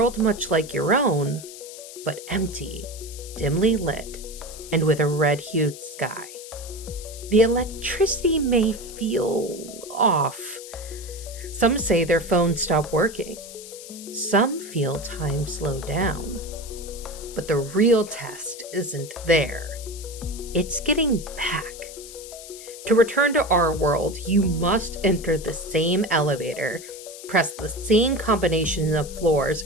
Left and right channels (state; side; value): noise; left; hiss, 14 dB below the sound